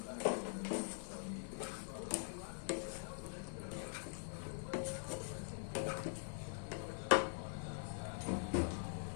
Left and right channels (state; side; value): silent; right; digital silence